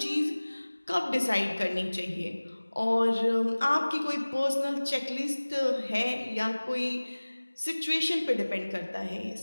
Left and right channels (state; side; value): inverted; both; correlation -1.00